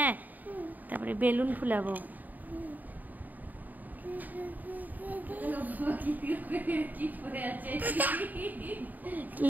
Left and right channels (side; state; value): left; late; 0.084 ms